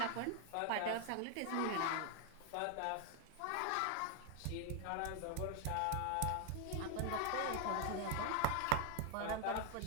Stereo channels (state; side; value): different; both; correlation 0.00